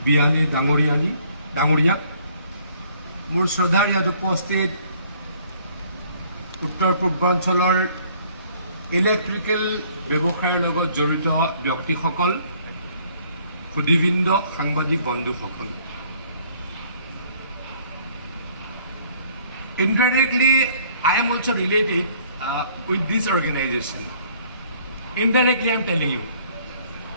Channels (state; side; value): inverted; both; correlation -0.60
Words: বিয়ানী ডাঙৰীয়া, মোৰ শ্ৰদ্ধাৰ ইয়াত উপস্থিত উত্তৰ পূৰ্বাঞ্চলৰ ইলেক্ট্ৰিকেল ব্যৱসায়ৰ লগত জড়িত ব্যক্তিসকল, সুদীবৃন্দ, সাংবাদিক বন্ধুসকল, indirectly I am also related with this organization. Indirectly I am telling you,